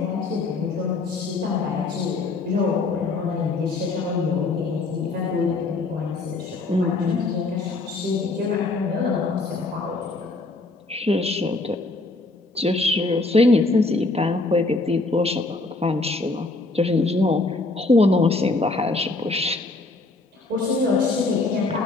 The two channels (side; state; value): right; quieter; 3.3 dB